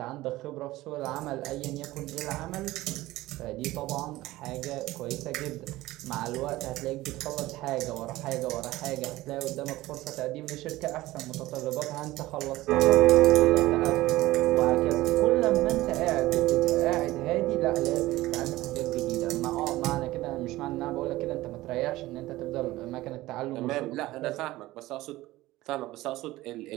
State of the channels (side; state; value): left; quieter; 17.7 dB